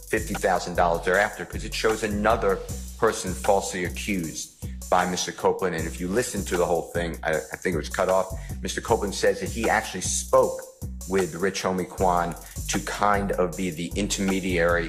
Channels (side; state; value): both; identical; correlation 1.00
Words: thereafter, because it shows another person falsely accused by Mr. Copeland. And if you listen to the whole thing, I think it was cut off, Mr. Copeland says that he actually spoke with Rich Homie Quan to kind of be the intermediary